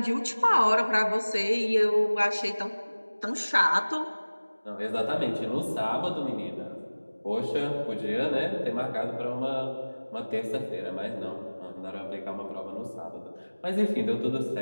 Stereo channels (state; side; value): inverted; both; correlation -1.00